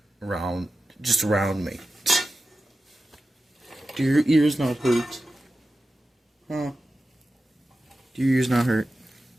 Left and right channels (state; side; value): normal; both; correlation 0.94